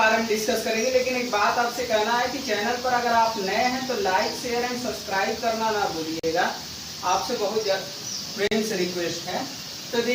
में डिस्कस करेंगे। लेकिन एक बात आपसे कहना है कि चैनल पर अगर आप नए हैं तो लाइक शेयर एंड सब्सक्राइब करना ना भूलिएगा, आपसे बहुत प्रेम से रिक्वेस्ट है। तो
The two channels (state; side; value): identical; both; correlation 1.00